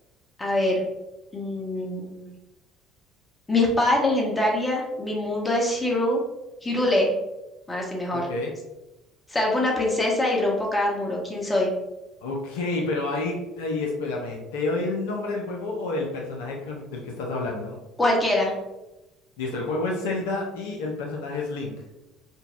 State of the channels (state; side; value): normal; both; correlation 0.56